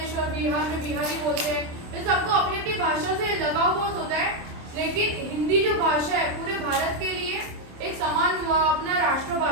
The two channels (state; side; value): late; left; 27 ms